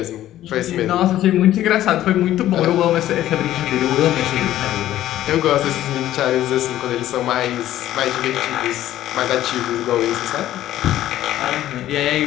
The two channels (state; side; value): quieter; right; 13.3 dB